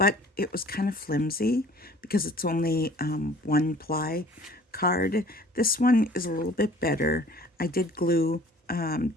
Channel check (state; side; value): normal; both; correlation 0.50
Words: it was kind of flimsy because it's only one ply card. This one is a little bit better. I did glue